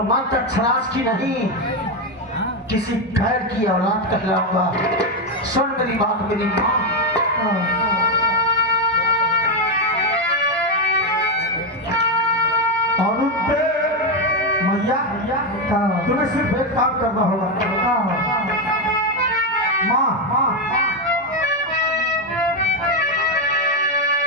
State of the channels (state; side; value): normal; both; correlation 0.07